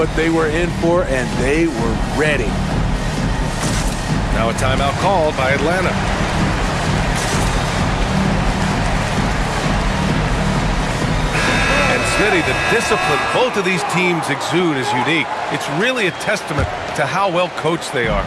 they were in for, and they were ready. Now a timeout called by Atlanta. And Smitty, the discipline both of these teams exude is unique. It's really a testament to how well coached they are.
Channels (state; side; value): identical; both; correlation 1.00